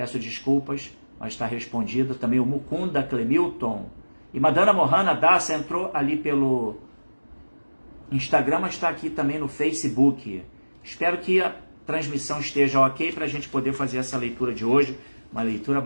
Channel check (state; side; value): inverted; both; correlation -1.00